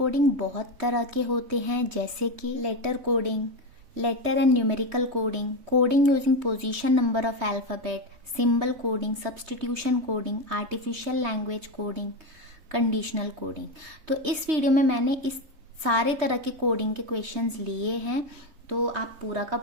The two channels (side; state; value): left; late; 3.2 ms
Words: बहुत तरह के होते हैं, जैसे कि letter coding, letter and numerical coding, coding using position number of alphabet, symbol coding, substitution coding, artificial language coding, conditional coding. तो इस वीडियो में मैंने इस सारे तरह के कोडिंग के क्वेश्चंस लिए हैं, तो आप पूरा का